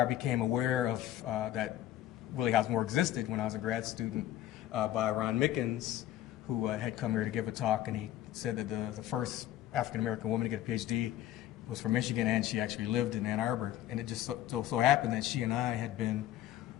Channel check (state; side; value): quieter; right; 13.1 dB